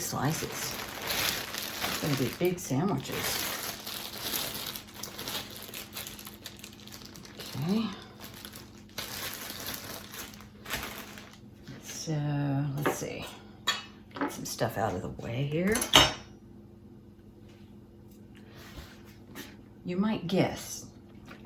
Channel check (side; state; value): both; identical; correlation 1.00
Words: slices. It's gonna be big sandwiches. Okay. So let's see. Get some stuff out of the way here. You might guess,